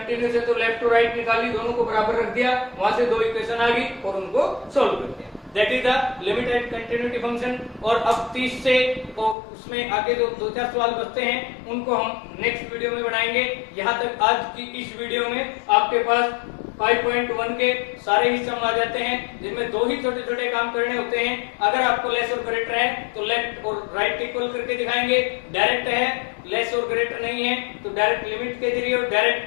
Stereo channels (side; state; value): right; drops out; at 9.3 s